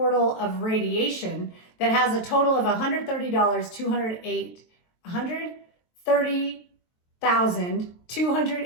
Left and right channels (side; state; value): right; late; 23 ms